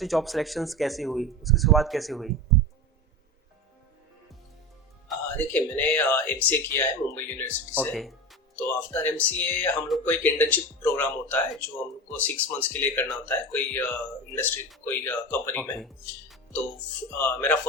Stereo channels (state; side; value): normal; both; correlation 0.26